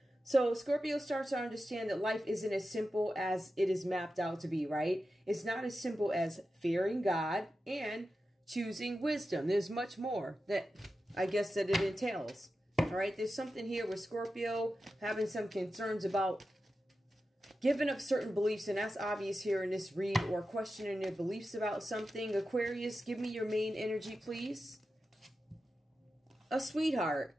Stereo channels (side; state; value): both; normal; correlation 0.91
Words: So Scorpio starts to understand that life isn't as simple as it is mapped out to be, right? It's not as simple as fearing God and choosing wisdom. There's much more that I guess that it entails. All right, there's something here with Scorpio having some concerns about giving up certain beliefs, and that's obvious here in this read, or questioning their beliefs about something. Aquarius, give me your main energy, please. A sweetheart.